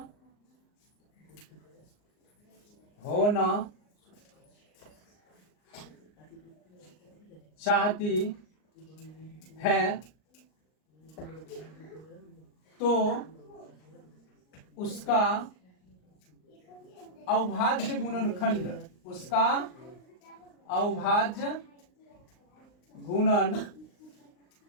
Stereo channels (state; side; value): late; right; 39 ms